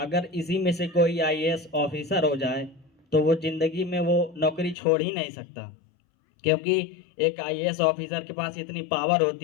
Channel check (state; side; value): drops out; right; at 4.8 s